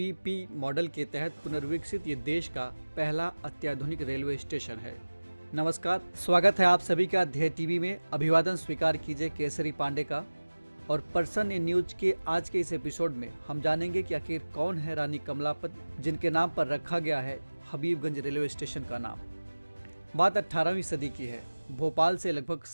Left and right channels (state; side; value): inverted; both; correlation -1.00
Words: मॉडल के तहत पुनर्विकसित ये देश का पहला अत्याधुनिक रेलवे स्टेशन है। नमस्कार, स्वागत है आप सभी का ध्येय टीवी में। अभिवादन स्वीकार कीजिए केसरी पांडे का। और पर्सन इन न्यूज के आज के इस एपिसोड में हम जानेंगे कि आखिर कौन है रानी कमलापत, जिनके नाम पर रखा गया है हबीबगंज रेलवे स्टेशन का नाम। बात 18वीं सदी की है। भोपाल से लगभग